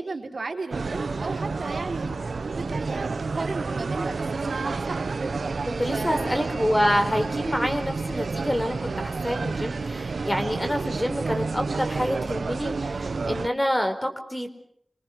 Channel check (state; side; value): normal; both; correlation 0.97